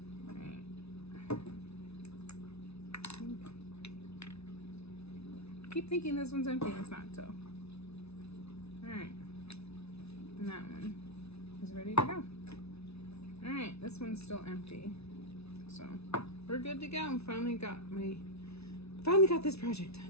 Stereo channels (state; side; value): late; right; 0.80 ms